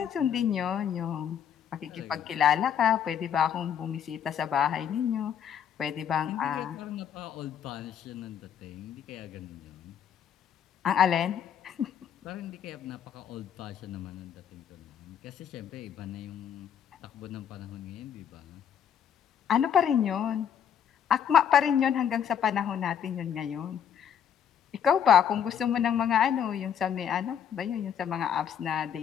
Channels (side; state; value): right; quieter; 8.7 dB